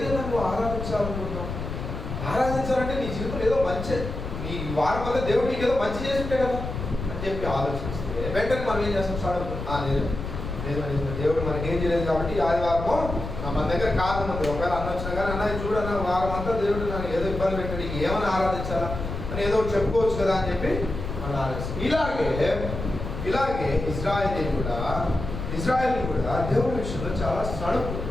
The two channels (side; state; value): left; noise; rumble, 6 dB below the sound